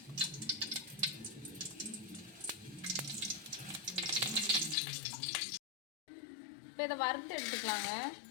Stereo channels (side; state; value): right; drops out; at 4.8 s